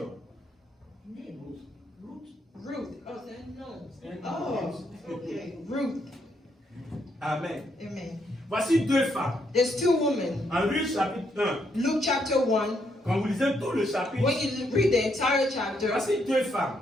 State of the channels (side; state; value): both; normal; correlation 0.75